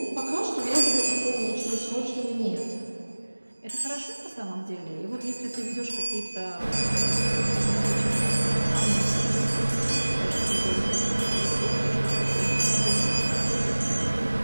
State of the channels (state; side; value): inverted; both; correlation -1.00